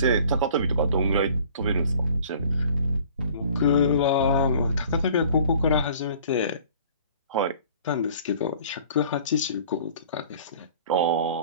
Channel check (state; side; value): inverted; both; correlation -0.50